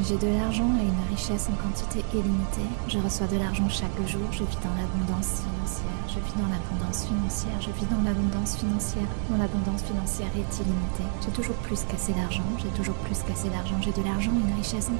J'ai de l'argent et une richesse en quantité illimitée. Je reçois de l'argent chaque jour. Je vis dans l'abondance financière. Je vis dans l'abondance financière. Je vis dans l'abondance financière. Mon abondance financière est illimitée. J'ai toujours plus qu'assez d'argent. J'ai toujours plus qu'assez d'argent. J'ai de l'argent et une richesse en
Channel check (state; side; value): silent; left; digital silence